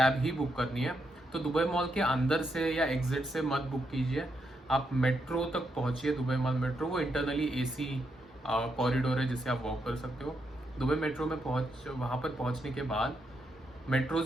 ही बुक करनी है, तो दुबई मॉल के अंदर से या एग्जिट से मत बुक कीजिए, आप मेट्रो तक पहुंचिए। दुबई मॉल मेट्रो वो इंटरनली एसी कॉरिडोर है जिसे आप वॉक कर सकते हो। दुबई मेट्रो में वहाँ पर पहुँचने के बाद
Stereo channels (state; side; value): normal; both; correlation 0.81